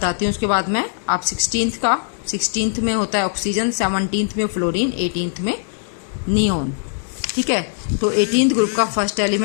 हूँ उसके बाद मैं। आप 16th में होता है ऑक्सीजन, 17th में फ्लोरीन, 18th में नियोन। ठीक है, तो 18th ग्रुप का फर्स्ट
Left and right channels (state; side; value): silent; right; digital silence